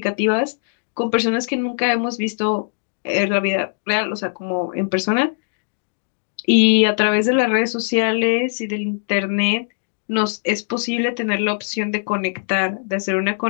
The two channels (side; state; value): right; silent; digital silence